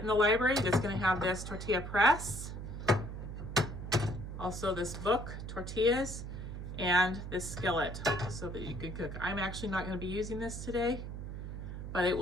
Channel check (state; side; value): noise; right; hum, 7 dB below the sound